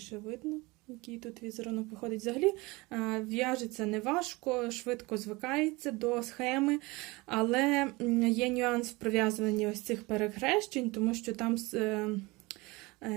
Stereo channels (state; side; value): quieter; left; 23.5 dB